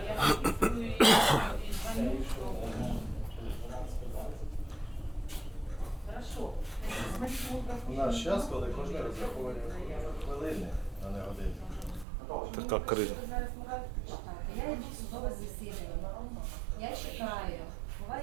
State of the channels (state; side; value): drops out; left; at 12.1 s